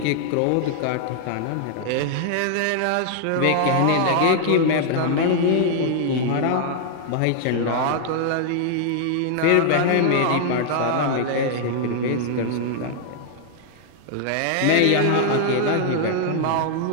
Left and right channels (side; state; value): both; different; correlation -0.01